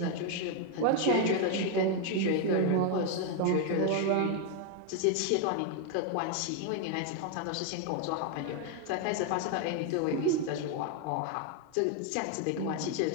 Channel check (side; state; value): both; different; correlation 0.01